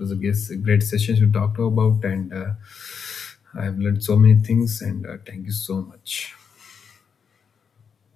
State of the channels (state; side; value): quieter; right; 6.6 dB